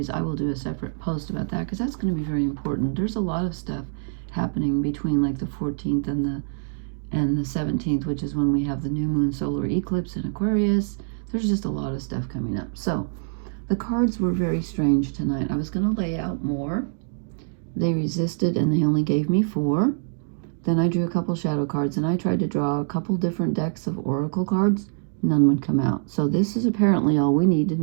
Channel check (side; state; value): left; silent; digital silence